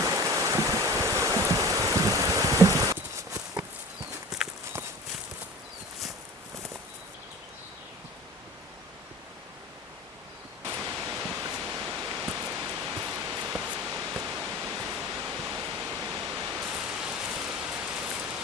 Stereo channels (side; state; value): both; normal; correlation 0.38